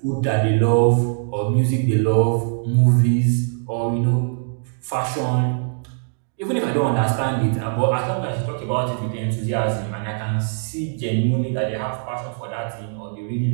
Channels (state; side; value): silent; left; digital silence